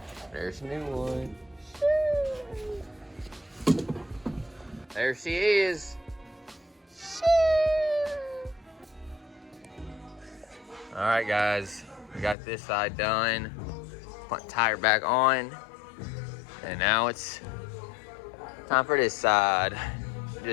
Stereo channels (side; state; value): right; drops out; at 12.4 s